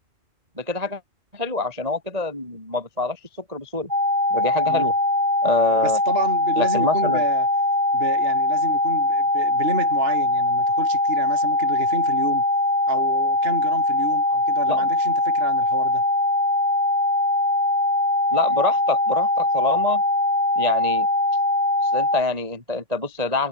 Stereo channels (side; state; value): left; late; 2.8 ms